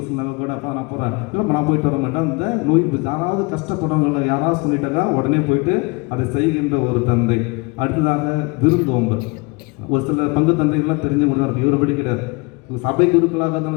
கூட அப்போ நான் போகிறேன், இல்லை நான் போயிட்டு வர மாட்டேன். அந்த நோய் யாராவது கஷ்டப்படுறவங்கள யாராவது சொல்லிட்டாக்கா உடனே போயிட்டு அதை செய்கின்ற ஒரு தந்தை. அடுத்ததாக விருந்தோம்பல். ஒரு சில பங்கு தந்தைகள்லாம் தெரிஞ்சவங்க தான் இருக்கும், இவரை படிக்கிறார். சபை குருக்களாக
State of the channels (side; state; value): right; quieter; 28.2 dB